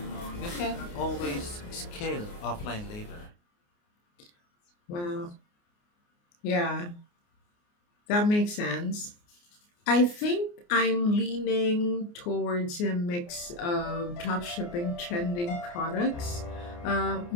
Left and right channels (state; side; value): late; right; 29 ms